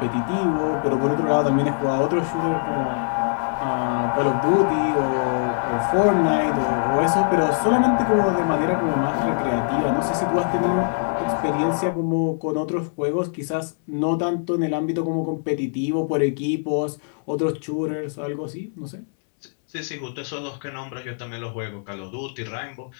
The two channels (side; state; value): right; silent; 64 dB below the other